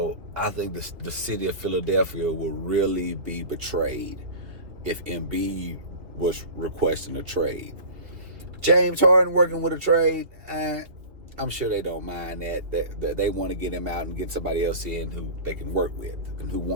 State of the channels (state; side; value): late; left; 2.5 ms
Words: I think the city of Philadelphia will really be betrayed if Embiid was requesting a trade. James Harden working with a trade, I'm sure they don't mind that. They want to get him out and get somebody else in who they can work with and who